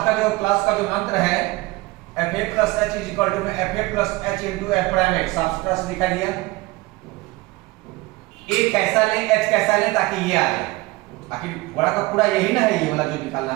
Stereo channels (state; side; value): quieter; left; 21.4 dB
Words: का जो क्लास का जो मंत्र है F A plus H is equal to में F A plus H into F prime X, साफ सुथरा से दिखा दिया। ए कैसा ले एच कैसा ले ताकि ये आ जाए, आखिर बड़ा का पूरा यही ना है, ये वाला जो निकालना